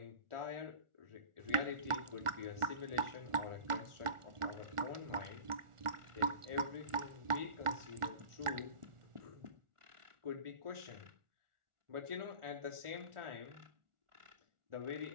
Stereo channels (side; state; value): left; late; 1.4 ms